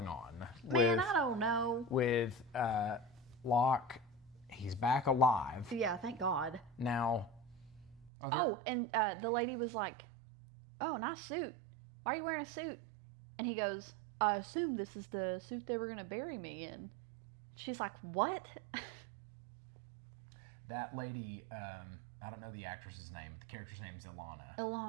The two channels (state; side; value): drops out; left; at 8.1 s